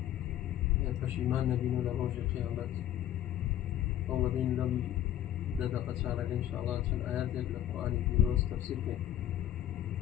پەشیمان نەبین و لە ڕۆژی قیامەت ئەو لەبین لەم دەدەقە چارەکە ئینشاءالله چەند ئاەتێک لە قورئانی پیرۆز تەفسیر بکەین.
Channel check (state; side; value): quieter; right; 11.9 dB